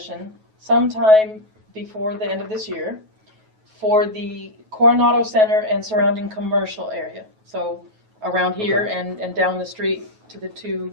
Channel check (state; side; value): late; left; 9.3 ms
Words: sometime before the end of this year for the Coronado Center and surrounding commercial area. So around here and down the street to the two